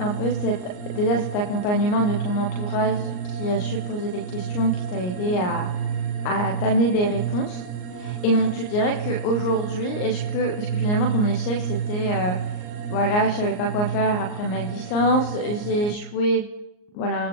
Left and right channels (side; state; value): right; late; 39 ms